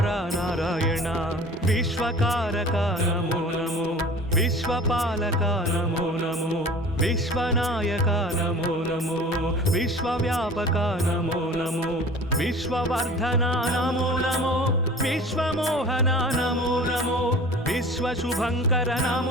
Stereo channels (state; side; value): normal; both; correlation 0.42